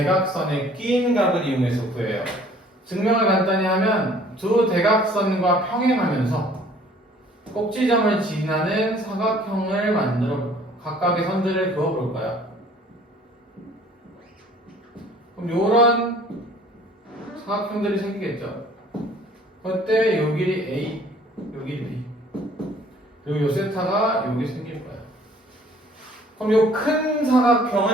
끼인 각을 이용해서 구해요. 증명을 간단히 하면 두 대각선과 평행하면서 꼭지점을 지나는 사각형을 만들어 각각의 선들을 그어볼까요? 그럼 요런 사각형들이 생기겠죠. 그때 요 길이 A, 요 길이 B, 그리고 요 세타가 여기 생길 거예요. 그럼 요 큰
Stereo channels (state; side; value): normal; both; correlation 0.55